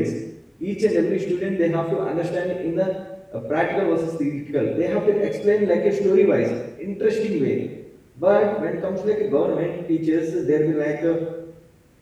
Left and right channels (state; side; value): identical; both; correlation 1.00